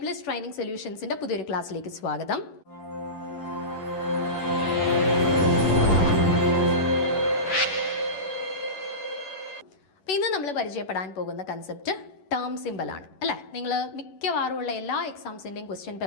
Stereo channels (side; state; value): right; late; 11 ms